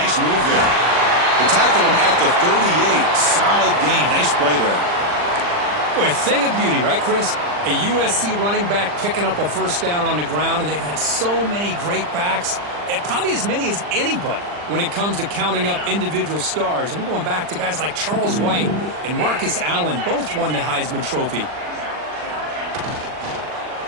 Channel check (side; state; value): left; late; 40 ms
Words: move there. They tackle him at the 38. Solid gain. Nice play there. Boy, a thing of beauty, right, Chris? A USC running back picking up a first down on the ground, and they've had so many great backs, and probably as many as anybody when it comes to counting up individual stars. I'm going back to guys like Charles White and Marcus Allen. Both won the Heisman Trophy.